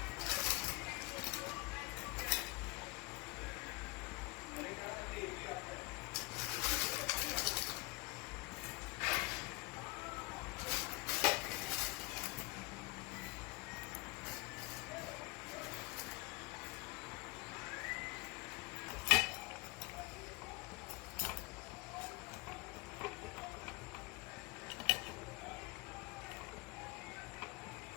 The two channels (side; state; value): right; quieter; 24.8 dB